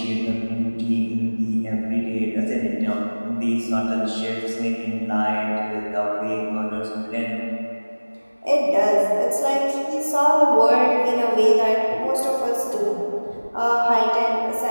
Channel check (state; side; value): inverted; both; correlation -1.00